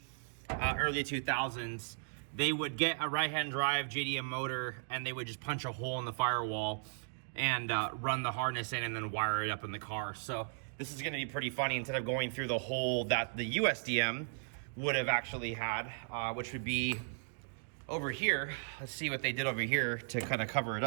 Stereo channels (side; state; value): left; silent; digital silence